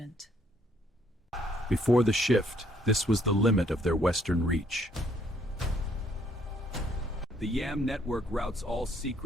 Before the shift, this was the limit of their western reach. The YAM network routes all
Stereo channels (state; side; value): normal; both; correlation 0.67